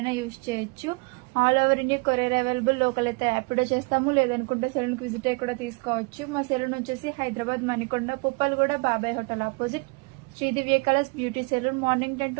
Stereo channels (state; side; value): quieter; left; 30.8 dB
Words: యూజ్ చేయొచ్చు. All over India courier available. Local అయితే యాప్లో చేస్తాము, లేదనుకుంటే సెలూన్కి విజిట్ అయ్యి కూడా తీసుకోవచ్చు. మా సెలూన్ వచ్చేసి Hyderabad Manikonda Puppalaguda Babai hotel opposite Shri Divya colours beauty salon. Morning 10